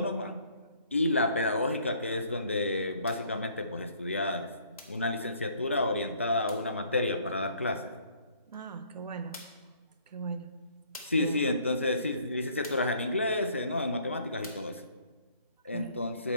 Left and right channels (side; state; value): both; inverted; correlation -0.61